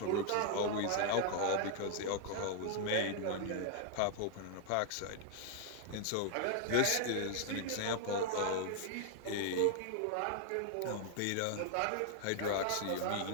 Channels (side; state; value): both; different; correlation 0.00